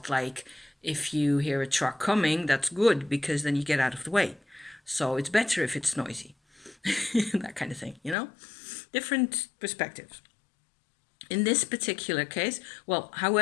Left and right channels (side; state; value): right; drops out; at 8.2 s